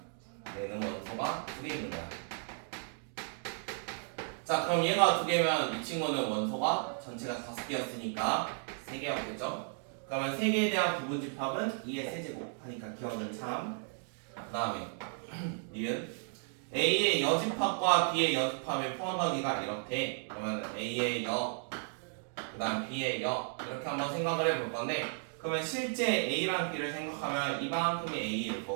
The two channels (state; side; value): silent; left; 55 dB below the other